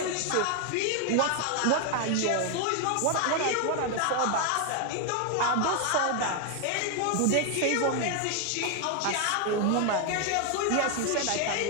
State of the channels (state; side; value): different; both; correlation 0.01